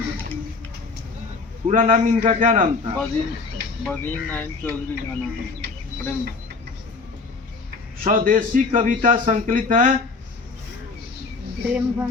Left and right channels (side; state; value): right; quieter; 4.2 dB